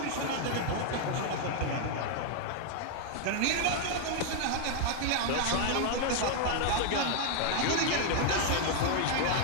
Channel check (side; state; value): both; different; correlation 0.00